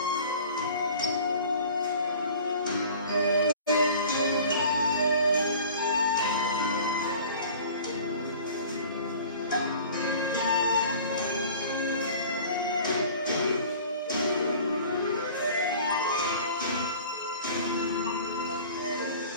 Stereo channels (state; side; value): inverted; both; correlation -0.45